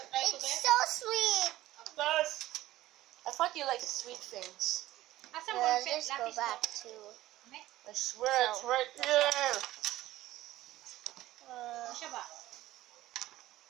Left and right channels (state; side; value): quieter; left; 15.7 dB